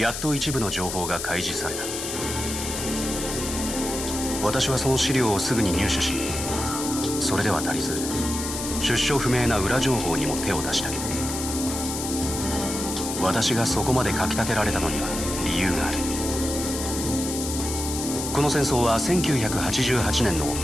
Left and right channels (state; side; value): noise; left; hiss, 5 dB below the sound